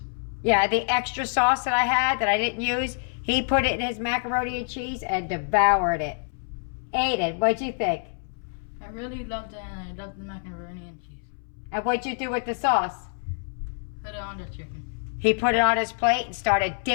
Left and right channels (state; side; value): silent; right; 61 dB below the other